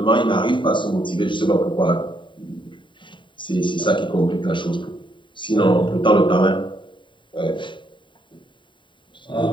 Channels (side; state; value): right; late; 0.23 ms